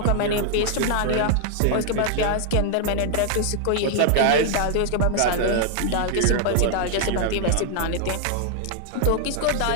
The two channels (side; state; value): both; different; correlation 0.00